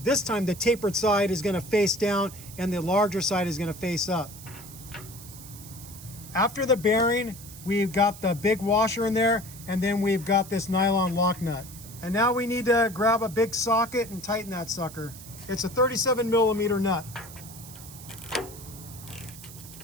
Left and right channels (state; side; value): noise; right; hiss, 16 dB below the sound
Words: this time the tapered side is going to face down and the larger side is going to face up. After the bearing, we've got the big washer in there, and then we've got this nylon lock nut. And now we need to grab a big socket and tighten that sucker. It's a 37mm nut.